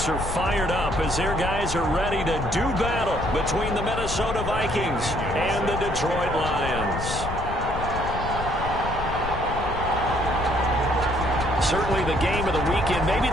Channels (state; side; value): noise; left; rumble, 6 dB below the sound